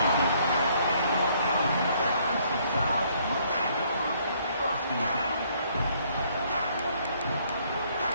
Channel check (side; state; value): both; inverted; correlation -0.66